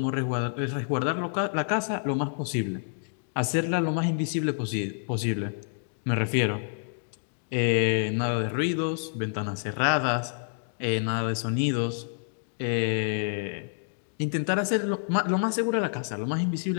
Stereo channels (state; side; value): silent; right; digital silence